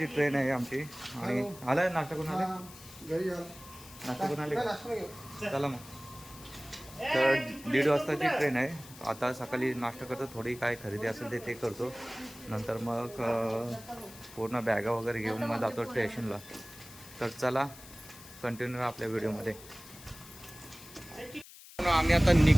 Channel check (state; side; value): noise; left; hiss, 18 dB below the sound